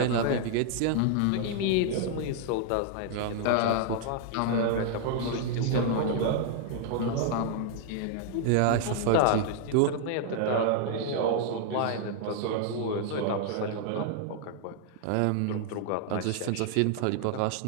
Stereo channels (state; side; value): different; both; correlation 0.00